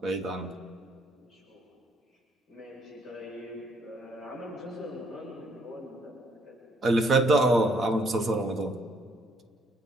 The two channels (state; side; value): normal; both; correlation 0.67